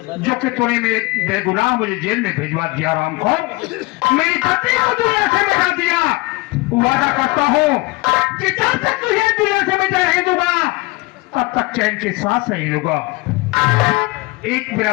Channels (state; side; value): quieter; right; 23.2 dB